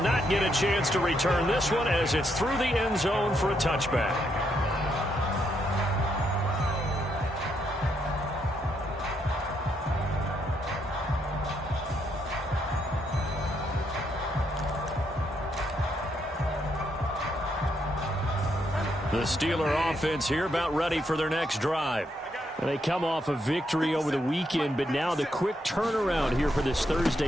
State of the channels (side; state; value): both; normal; correlation 0.77